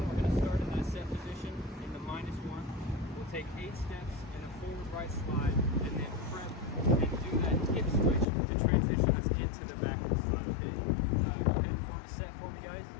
we're going to start in that set position in the -1. We'll take 8 steps in a forward right slide, and then prep and do that hip switch to transition us into the backward slide. Okay? You can set for me, guys.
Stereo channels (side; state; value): right; drops out; at 8.2 s